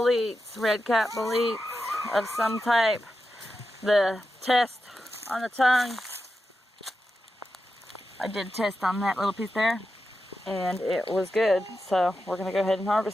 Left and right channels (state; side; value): normal; both; correlation 0.90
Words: red cap boletes of some type. The test on the tongue, I did test on that little piece there, and it was good. So we're going to go ahead and